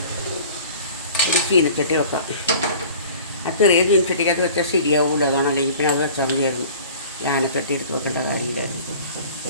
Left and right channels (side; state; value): both; inverted; correlation -0.45